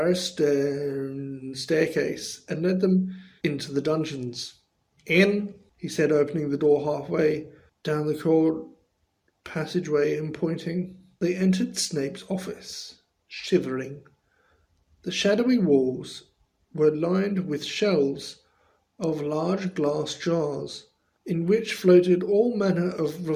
stone staircase, and led them into the dungeons. "In," he said, opening the door halfway down the cold passageway and pointing. They entered Snape's office, shivering. The shadowy walls were lined with shelves of large glass jars, in which floated all manner of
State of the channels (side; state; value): both; identical; correlation 1.00